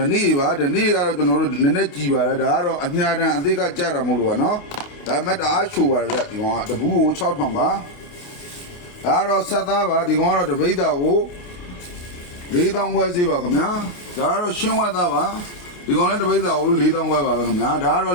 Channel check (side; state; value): right; late; 29 ms